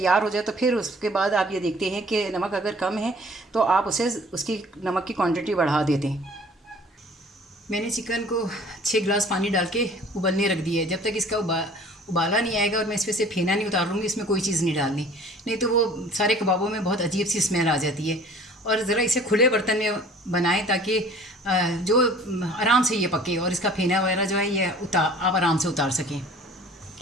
हो जाए तो फिर उसके बाद आप ये देखते हैं कि नमक अगर कम है तो आप उसकी नमक की क्वांटिटी बढ़ा देते हैं। मैंने चिकन को 6 गिलास पानी डाल के उबलने रख दिया है। जब तक इसका उबाला नहीं आएगा और मैं इसमें से फेना नहीं उतार लूँगी, इसमें कोई चीज़ नहीं डालनी, नहीं तो वो सारे कबाबों में बहुत अजीब सी स्मेल आ जाती है। और ज़रा इसे खुले बर्तन में बनाएं ताकि जो आराम से ये पके और इसका फेना वगैरह जो है ये आप आराम से उतार सकें।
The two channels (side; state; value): both; normal; correlation 0.49